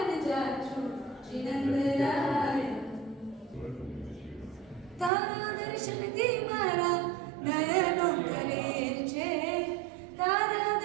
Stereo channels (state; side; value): drops out; left; at 5.1 s